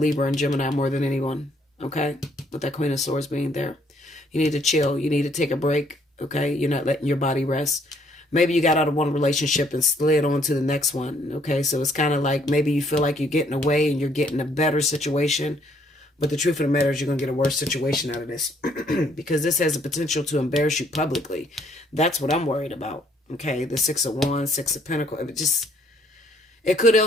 and Gemini more than anyone, okay? With that Queen of Swords being there. You need to chill. You need to take a break. Okay, you're not letting your body rest. Maybe you got out of one relationship and slid on to the next one. Okay, so it's kind of like maybe you feel like you're getting away and you're getting a better situation. But the truth of the matter is you're going to get a worse situation out of this. Because this has the potential to embarrass you publicly. That's what I'm worried about. Okay, the Six of Wands, Six of Pentacles. It could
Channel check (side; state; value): both; normal; correlation 0.66